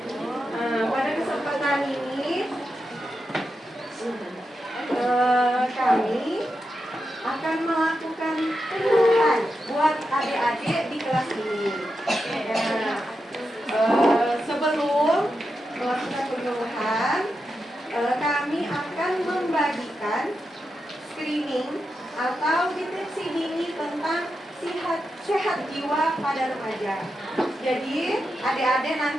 Pada kesempatan ini kami akan melakukan penyuluhan buat adik-adik di kelas ini. Sebelum melakukan penyuluhan, kami akan membagikan screening atau deteksi dini tentang sehat jiwa pada remaja. Jadi adik-adik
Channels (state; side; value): normal; both; correlation 0.88